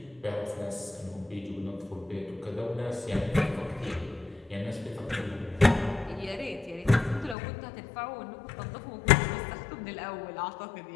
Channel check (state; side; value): drops out; right; at 7.4 s